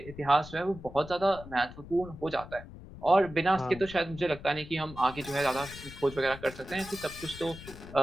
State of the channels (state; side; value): noise; left; rumble, 15 dB below the sound